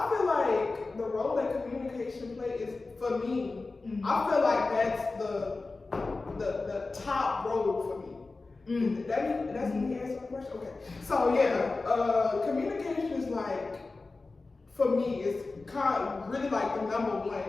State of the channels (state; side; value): quieter; right; 3.6 dB